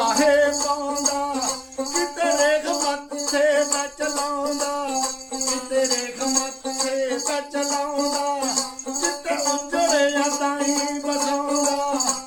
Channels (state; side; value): identical; both; correlation 1.00